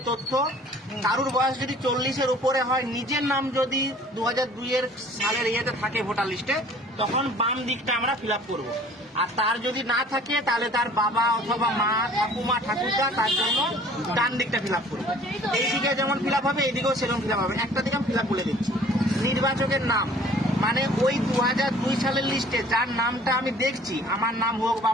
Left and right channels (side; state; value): both; normal; correlation 0.51